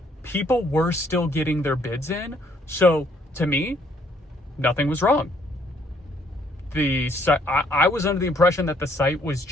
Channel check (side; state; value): both; normal; correlation 0.66